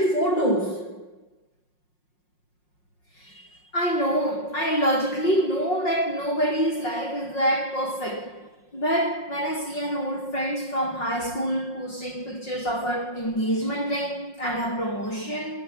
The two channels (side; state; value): right; late; 5.5 ms